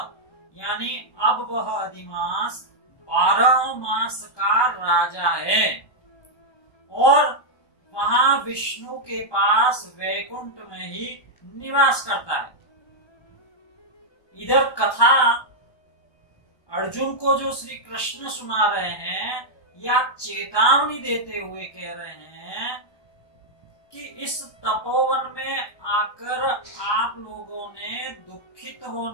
यानी अब वह अधिमास 12 मास का राजा है और वहां विष्णु के पास वैकुंठ में ही निवास करता है। इधर कथा अर्जुन को जो श्री कृष्ण सुना रहे हैं या चेतावनी देते हुए कह रहे हैं कि इस तपोवन में आकर आप लोगों ने दुखित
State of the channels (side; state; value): right; late; 1.2 ms